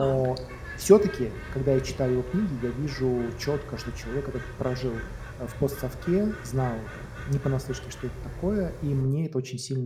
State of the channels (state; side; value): identical; both; correlation 1.00